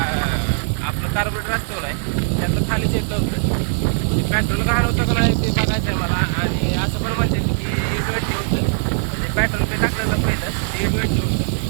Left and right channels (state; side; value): silent; left; 58 dB below the other